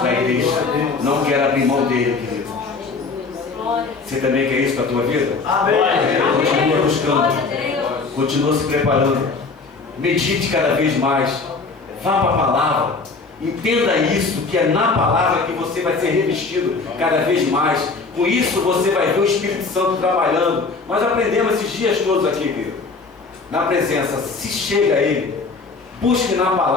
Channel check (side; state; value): right; quieter; 4.2 dB